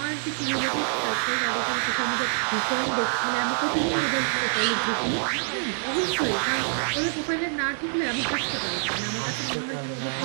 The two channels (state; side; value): silent; left; digital silence